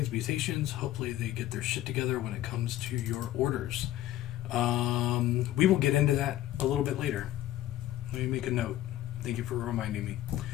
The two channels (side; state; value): right; quieter; 13.9 dB